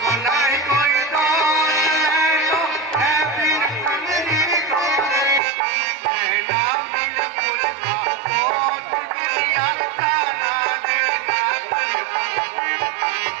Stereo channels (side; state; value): left; drops out; at 5.4 s